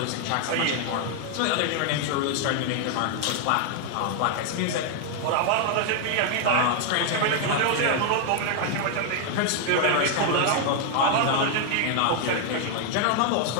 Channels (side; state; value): both; different; correlation 0.00